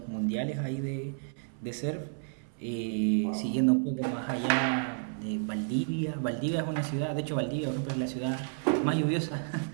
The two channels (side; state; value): left; silent; 57 dB below the other